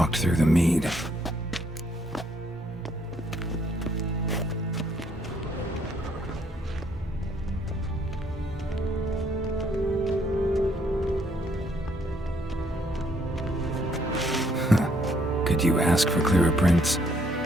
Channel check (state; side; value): normal; both; correlation 0.68